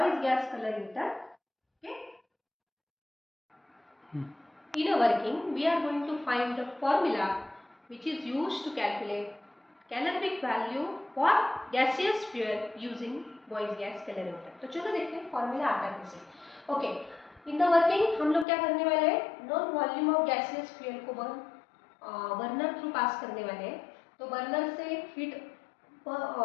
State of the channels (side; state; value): right; drops out; at 18.4 s